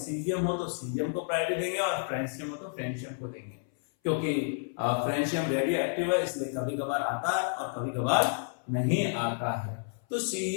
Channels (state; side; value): silent; right; 58 dB below the other